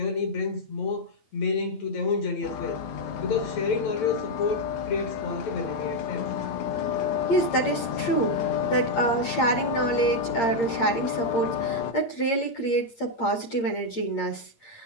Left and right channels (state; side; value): late; right; 8.7 ms